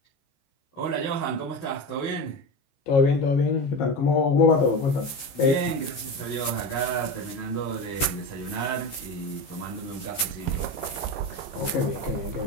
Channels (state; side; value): late; right; 15 ms